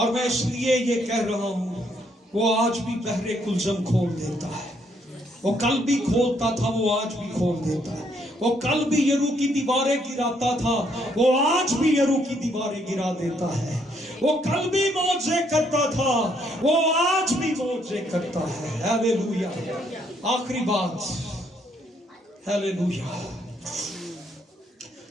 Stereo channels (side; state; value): both; normal; correlation 0.71